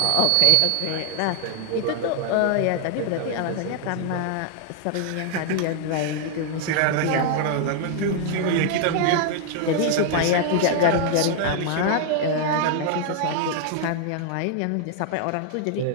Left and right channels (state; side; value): different; both; correlation 0.00